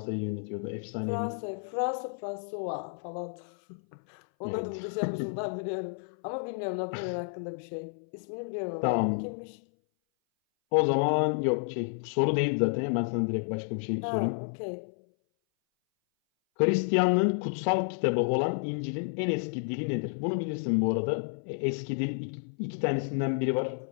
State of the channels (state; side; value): silent; right; 58 dB below the other